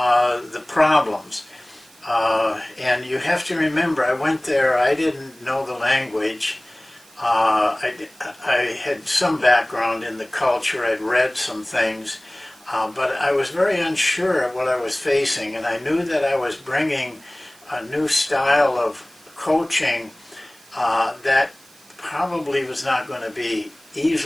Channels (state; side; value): noise; right; hiss, 26 dB below the sound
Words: problems. And you have to remember, I went there, I didn't know the language. I had some background in the culture, I'd read some things, but I was very unsure of what I was facing, and I knew that I was bringing a new style of coaching that probably was not going to be